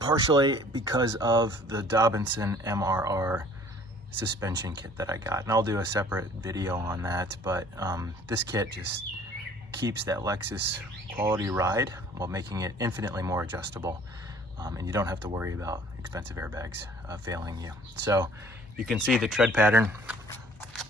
partially because of the Dobinson MRR suspension kit that I got, and I'll do a separate video on that. But this kit just keeps that Lexus quality ride while making it infinitely more adjustable, and you don't have to worry about expensive airbags failing you. So you can see the tread pattern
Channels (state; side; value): normal; both; correlation 0.54